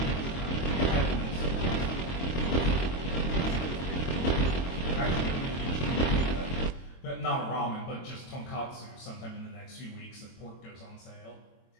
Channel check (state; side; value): late; right; 23 ms